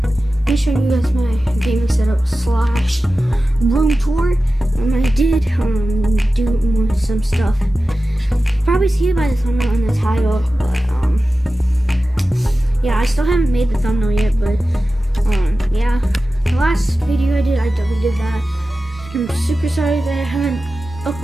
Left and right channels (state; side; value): normal; both; correlation 0.94